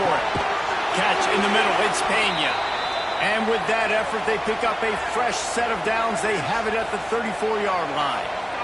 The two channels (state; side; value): identical; both; correlation 1.00